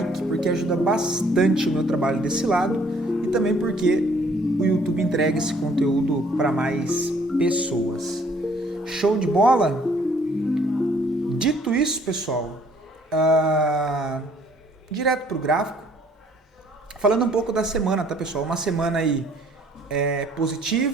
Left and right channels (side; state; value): both; normal; correlation 0.60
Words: porque ajuda bastante o meu trabalho desse lado e também porque o YouTube entrega esse conteúdo para mais pessoas. Show de bola? Dito isso, pessoal, direto para o gráfico, falando um pouco da semana, tá, pessoal? Uma semana aí